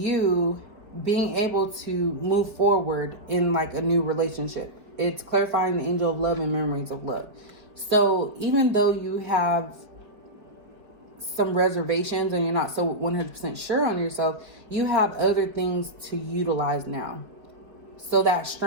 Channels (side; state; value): left; late; 4.6 ms